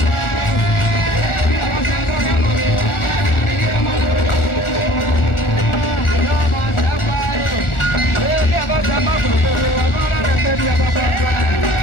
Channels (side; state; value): right; late; 1.4 ms